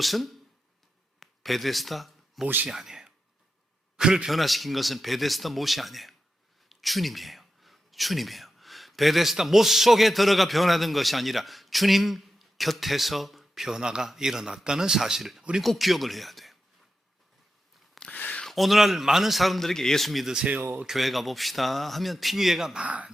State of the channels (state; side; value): normal; both; correlation 0.90